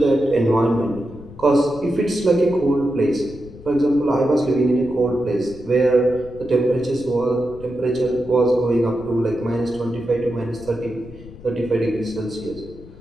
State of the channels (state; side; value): noise; left; rumble, 18 dB below the sound